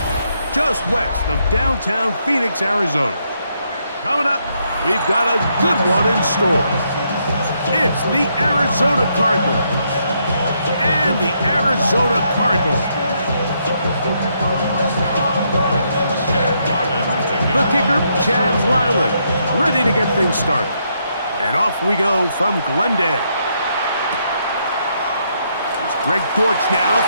just west of downtown Phoenix, Arizona. Coming up, we've got a good one in store. It's the Arizona Cardinals and the Arizona Cardinals. The kicker, Chad Ryland, ready to get things started. And off we go from Glendale. It's Greg Dortch now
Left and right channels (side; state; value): both; inverted; correlation -0.76